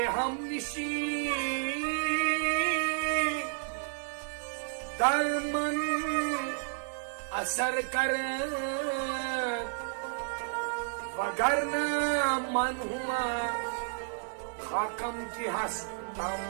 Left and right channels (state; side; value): silent; left; digital silence